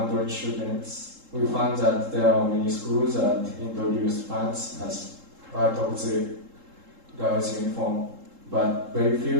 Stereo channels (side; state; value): left; late; 3.7 ms